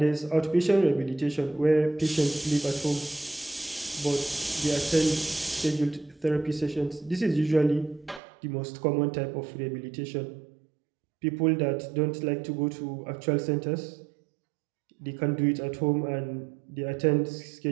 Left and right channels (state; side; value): drops out; left; at 8.2 s